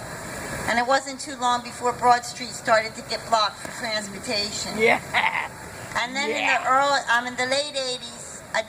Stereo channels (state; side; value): identical; both; correlation 1.00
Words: and it wasn't too long before Broad Street started to get blocked for transportation. Yeah. And then in the late 80s,